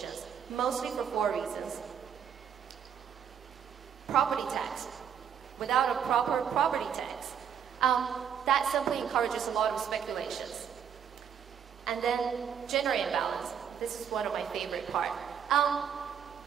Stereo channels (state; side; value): quieter; left; 8.1 dB